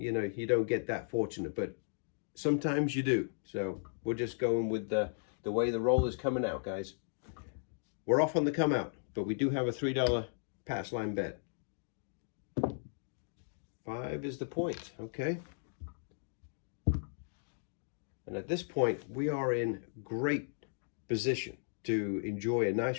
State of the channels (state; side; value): silent; right; digital silence